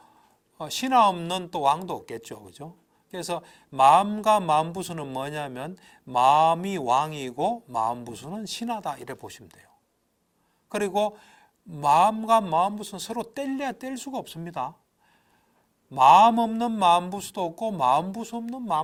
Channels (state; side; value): identical; both; correlation 1.00